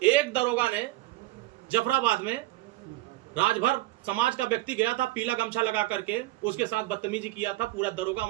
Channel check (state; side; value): quieter; left; 18.0 dB